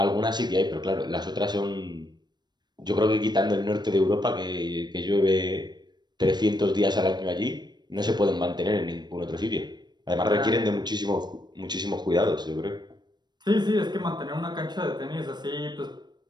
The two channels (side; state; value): left; late; 0.21 ms